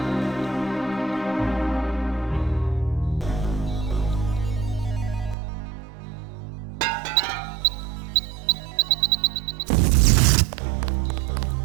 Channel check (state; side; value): drops out; left; at 5.4 s